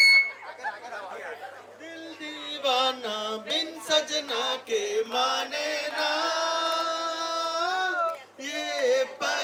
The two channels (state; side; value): identical; both; correlation 1.00